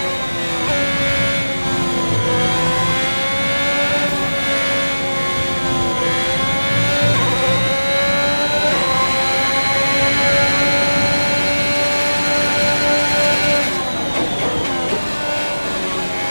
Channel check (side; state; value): both; inverted; correlation -1.00